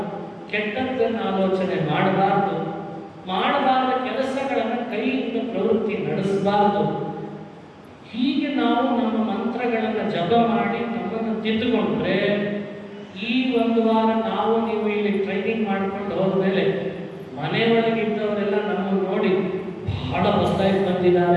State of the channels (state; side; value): identical; both; correlation 1.00